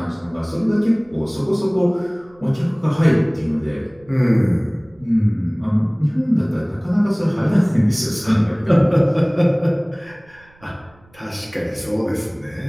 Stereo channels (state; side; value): noise; right; rumble, 29 dB below the sound